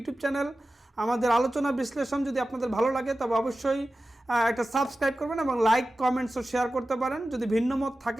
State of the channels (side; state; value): both; normal; correlation 0.94